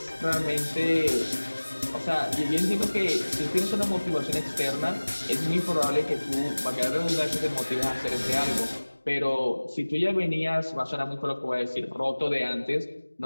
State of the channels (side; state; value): both; inverted; correlation -1.00